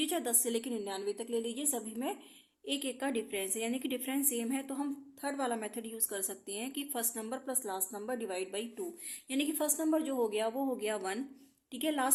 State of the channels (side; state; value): both; identical; correlation 1.00